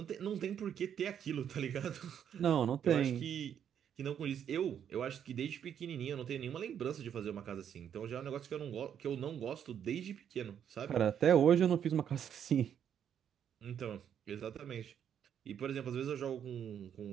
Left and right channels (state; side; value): quieter; left; 8.9 dB